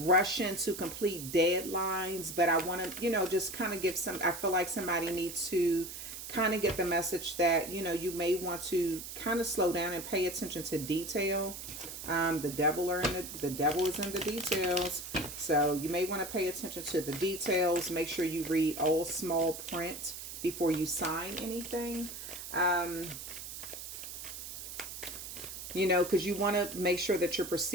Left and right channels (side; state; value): right; noise; hiss, 9 dB below the sound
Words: to complete deadlines. But I want to, just kind of give I feel like somebody needs to kind of get the message that, you may want to kind of slow down and pay attention to detail. The devil is in the details. So you may want to pay attention to the details. Make sure you read all small print before you sign anything. Because you want to make sure that you're